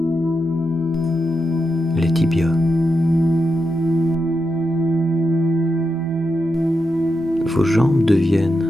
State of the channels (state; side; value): normal; both; correlation 0.86